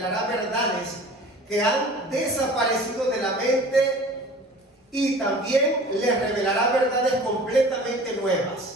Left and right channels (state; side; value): normal; both; correlation 0.43